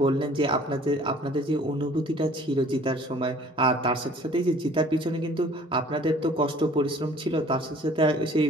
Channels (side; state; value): both; normal; correlation 0.52